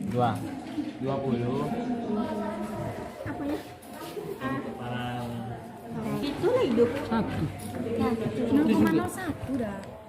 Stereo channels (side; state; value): both; identical; correlation 1.00